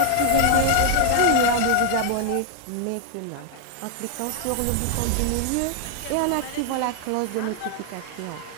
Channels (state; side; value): different; both; correlation 0.00